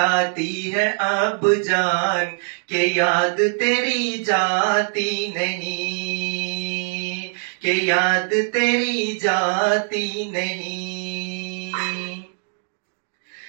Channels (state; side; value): silent; left; 64 dB below the other